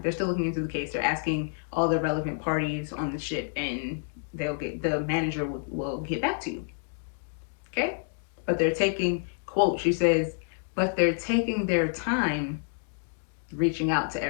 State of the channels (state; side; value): silent; right; 59 dB below the other